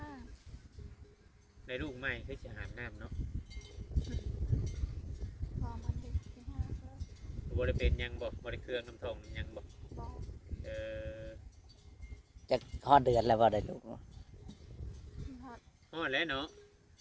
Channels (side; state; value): both; identical; correlation 1.00